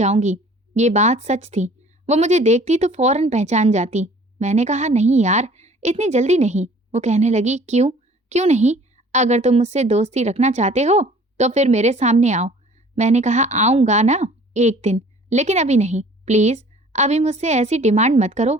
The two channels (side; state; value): both; normal; correlation 0.51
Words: ये बात सच थी। वो मुझे देखती तो फौरन पहचान जाती। मैंने कहा, नहीं यार, इतनी जल्दी नहीं। वो कहने लगी, क्यों? क्यों नहीं? अगर तुम मुझसे दोस्ती रखना चाहते हो तो फिर मेरे सामने आओ। मैंने कहा, आऊंगा ना एक दिन, लेकिन अभी नहीं, प्लीज अभी मुझसे ऐसी डिमांड मत करो।